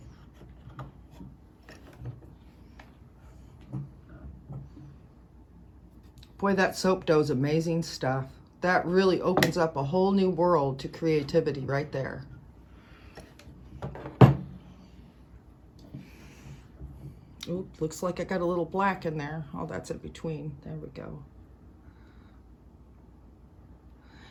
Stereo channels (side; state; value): both; identical; correlation 1.00